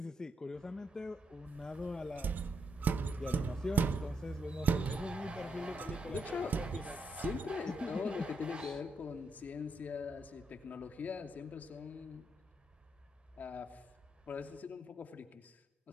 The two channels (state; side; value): normal; both; correlation 0.78